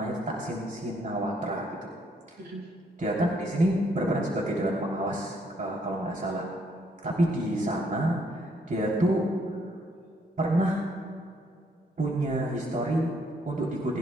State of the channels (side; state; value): both; normal; correlation 0.69